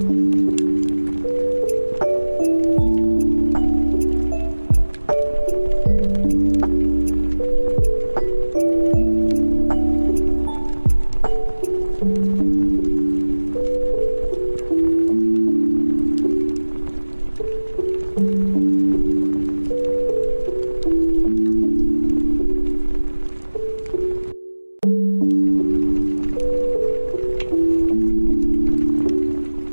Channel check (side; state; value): both; inverted; correlation -1.00